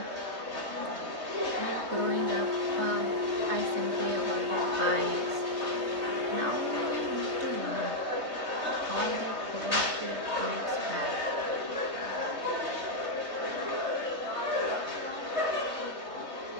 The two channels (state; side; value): late; left; 3.2 ms